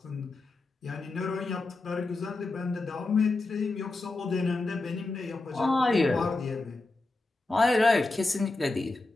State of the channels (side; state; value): right; quieter; 3.2 dB